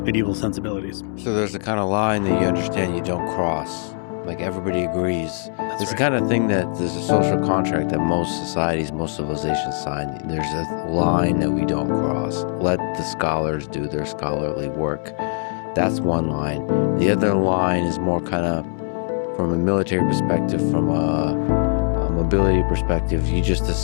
medieval sensibilities. So there's a kind of line that you understand you don't cross. Like everybody agrees. That's It's right. the kind of thing that there's a social contract that most societies, most civilizations sign. There's a line that we don't cross. Let the scholars do their scholarly work. That's one line. The other line is more kind of from a military perspective, from a mobility perspective. You just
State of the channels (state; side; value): silent; right; 64 dB below the other